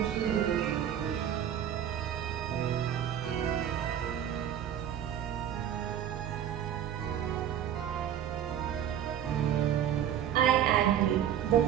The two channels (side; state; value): left; quieter; 10.1 dB